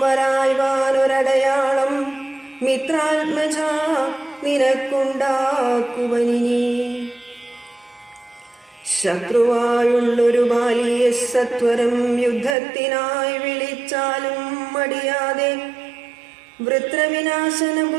വരായ്വാനൊരടയാളം മിത്രാത്മജ നിനക്കുണ്ടാക്കുവനിനി ശത്രുവായുള്ളൊരു ബാലിയെ സത്വരം യുദ്ധത്തിനായി വിളിച്ചാലും മടിയാതെ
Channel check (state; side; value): drops out; left; at 12.6 s